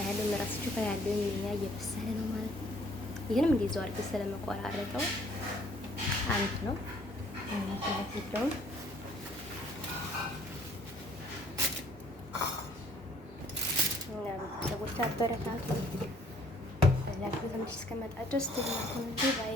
ምራስችሁ ያለው የኛ እየበሰለ ነው ማለት ነው። ይሄንም እንደዛው አድርገን ስለመቆራረጠው አንድ ነው ማለት ነው። እና ቤተሰቦች አበረታቱኝ። ላይክ በተመች እስከመጣ ድረስ ባይ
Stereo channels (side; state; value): both; normal; correlation 0.60